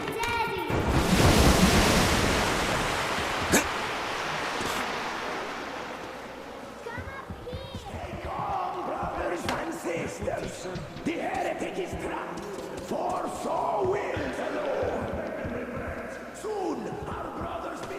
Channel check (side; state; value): both; identical; correlation 1.00